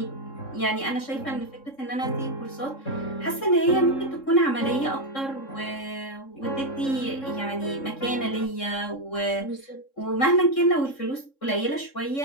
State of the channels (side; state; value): right; late; 3.7 ms